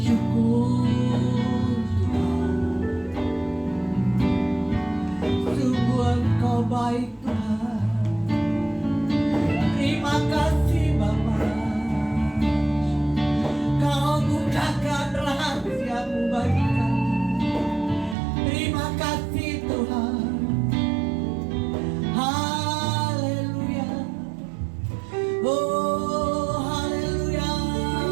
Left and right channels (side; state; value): left; drops out; at 18.2 s